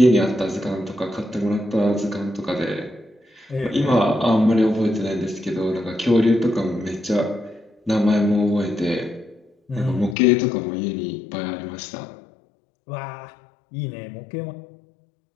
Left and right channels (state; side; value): drops out; right; at 10.2 s